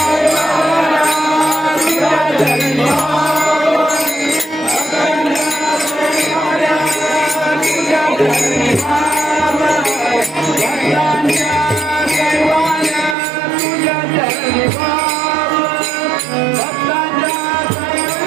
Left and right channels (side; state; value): left; drops out; at 13.2 s